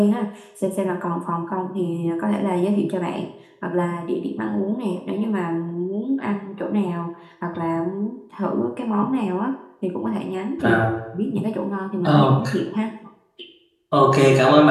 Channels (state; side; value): identical; both; correlation 1.00